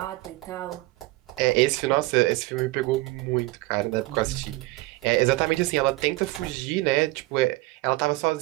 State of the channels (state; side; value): quieter; left; 20.8 dB